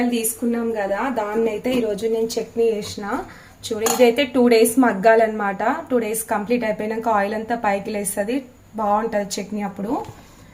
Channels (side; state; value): both; identical; correlation 1.00